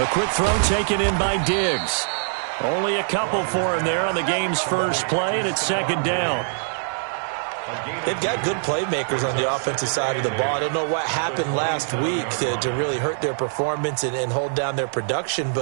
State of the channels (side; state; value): left; silent; digital silence